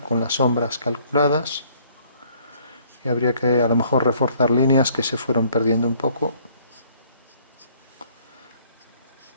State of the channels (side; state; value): both; inverted; correlation -0.61